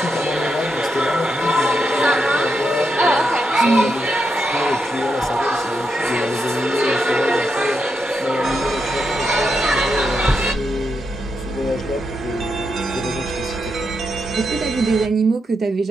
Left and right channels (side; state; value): both; normal; correlation 0.83